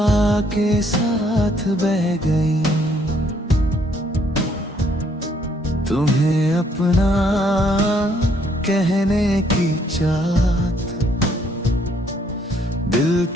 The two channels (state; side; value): normal; both; correlation 0.67